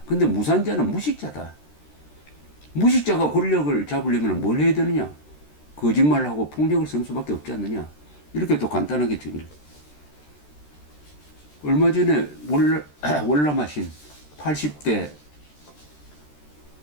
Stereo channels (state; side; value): late; right; 13 ms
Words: 근데 무산자는 무식자다. 무식자가 권력을 잡으려면 뭘 해야 되느냐. 거짓말하고 폭력을 쓰는 수밖에 없지 않느냐. 이렇게 또 간단하게 정의를. 얼마 전에 월남하신 80대